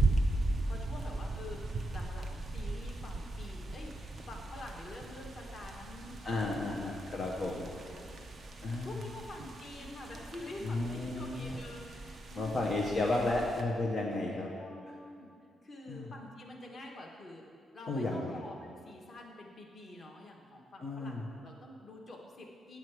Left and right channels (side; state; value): both; normal; correlation 0.82